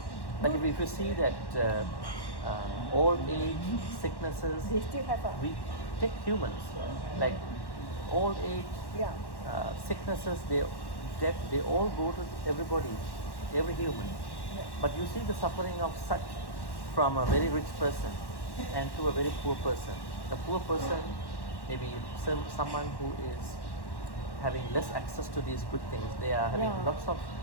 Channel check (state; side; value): late; right; 1.1 ms